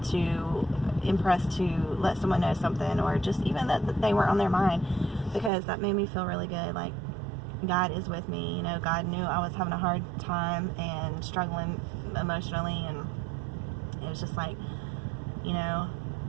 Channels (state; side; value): drops out; left; at 5.5 s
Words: to, impressed to let someone know something, or just even that they were on their mind, because that made me feel really good. Like, God is with me. You know, God knew I was having a hard time and struggling emotionally, and it was just like, you know,